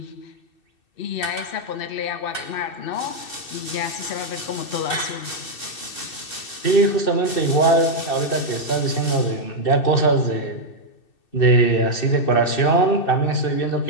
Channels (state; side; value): late; right; 2.6 ms